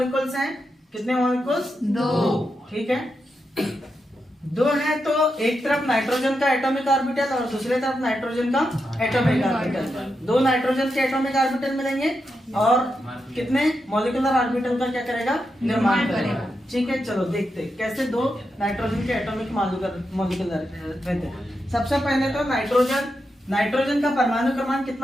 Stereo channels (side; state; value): both; normal; correlation 0.86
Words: हैं, कितने मॉलिक्यूल्स, दो, ठीक है। दो है तो एक तरफ नाइट्रोजन का एटॉमिक ऑर्बिटल और दूसरी तरफ नाइट्रोजन का एटॉमिक ऑर्बिटल, दो नाइट्रोजन के एटॉमिक ऑर्बिटल मिलेंगे और कितने मॉलिक्यूलर ऑर्बिटल का क्या करेगा, निर्माण करेगा, ठीक है। चलो देखते हैं कैसे दो नाइट्रोजन के एटॉमिक मॉलिक्यूलर रहते हैं। सबसे पहले तो नाइट्रोजन का परमाणु क्रमांक